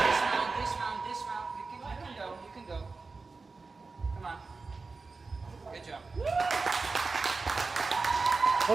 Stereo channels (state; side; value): quieter; left; 4.1 dB